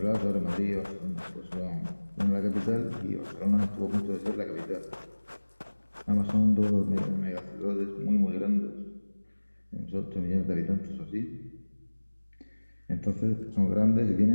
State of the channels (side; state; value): both; inverted; correlation -1.00